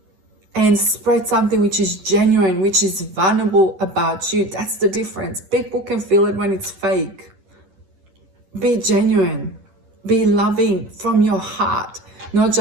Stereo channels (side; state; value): left; late; 11 ms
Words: And spread something which is genuine, which is vulnerable about you. That's the difference. People can feel it when it's fake. Be genuine. Be loving from your heart. Not